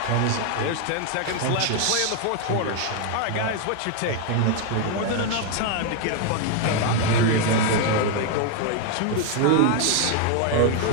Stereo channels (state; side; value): different; both; correlation 0.01